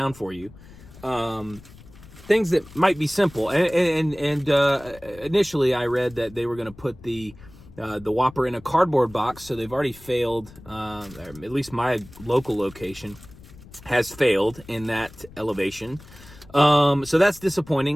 for you, things that might be simple. And initially I read that they were going to put the Whopper in a cardboard box, so they've already failed. At least my local location has failed in that elevation. So that's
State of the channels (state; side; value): noise; left; rumble, 21 dB below the sound